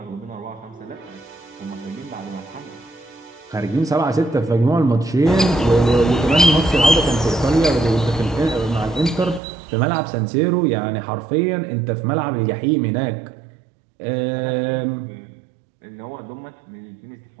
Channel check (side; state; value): left; drops out; at 9.4 s